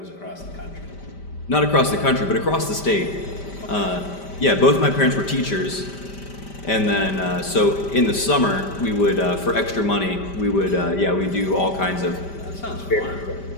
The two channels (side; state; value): right; late; 5.1 ms